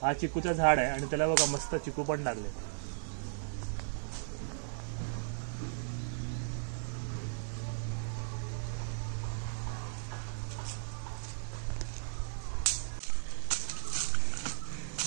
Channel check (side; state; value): left; silent; digital silence